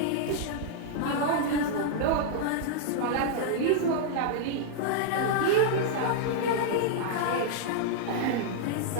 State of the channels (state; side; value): different; both; correlation -0.01